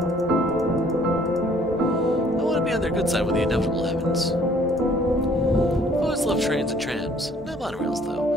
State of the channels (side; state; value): both; normal; correlation 0.59